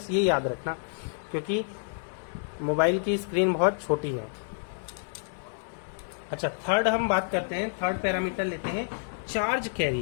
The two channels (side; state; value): right; silent; digital silence